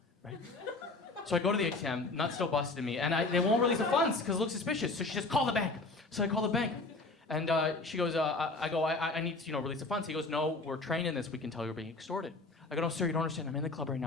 Right? So I go to the ATM, nut still busted in me, and they won't release the funds because it looks suspicious. So she just call the bank. So I call the bank. And she goes, I need to, release the funds. He goes, no, we're trained in this. We can tell you're being extorted. I go, no, sir, you don't understand. I'm in the club right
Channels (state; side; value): quieter; right; 3.3 dB